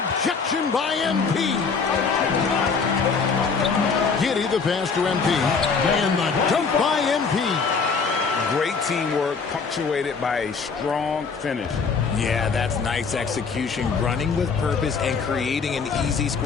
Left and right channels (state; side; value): quieter; right; 5.2 dB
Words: by MP. Giddy the pass to MP. And the dunk by MP. Great teamwork punctuated by a strong finish. Yeah, that's nice execution. Running with purpose and creating an easy